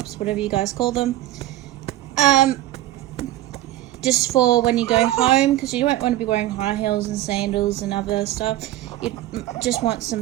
whatever you guys call them. Just for when you go home, because you don't want to be wearing high heels and sandals and other stuff. You just want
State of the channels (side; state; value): left; quieter; 14.7 dB